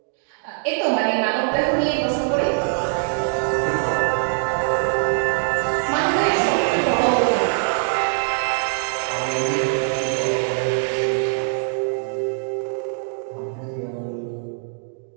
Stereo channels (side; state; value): left; silent; digital silence